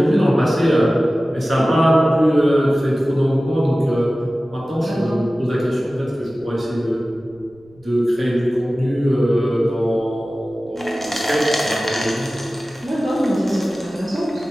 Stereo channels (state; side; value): noise; right; rumble, 29 dB below the sound